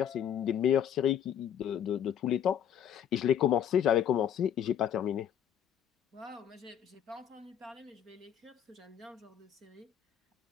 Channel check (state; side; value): quieter; right; 9.3 dB